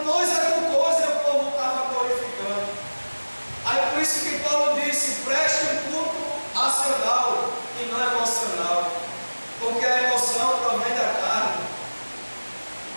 coisa por coisa e o povo estava glorificando. Aí por isso que Paulo disse: preste um culto racional e não emocional, porque a emoção provém da carne.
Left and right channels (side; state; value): both; inverted; correlation -1.00